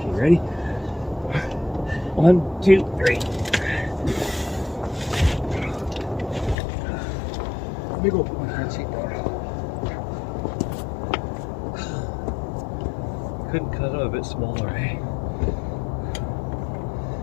ready? 1, 2, 3. Let me go put my front seat down. Couldn't cut it a bit smaller, eh?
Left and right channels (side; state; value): right; drops out; at 6.6 s